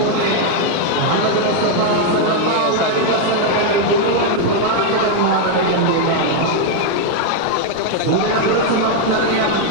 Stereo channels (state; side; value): different; both; correlation 0.00